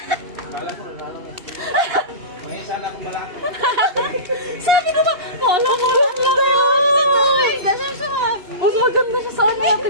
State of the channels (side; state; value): left; late; 2.8 ms